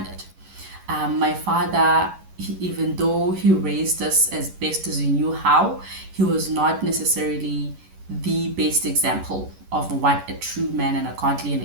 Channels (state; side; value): late; left; 11 ms